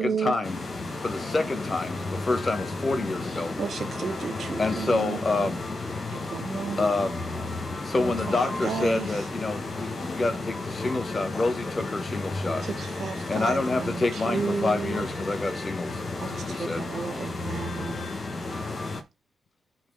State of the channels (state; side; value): normal; both; correlation 0.88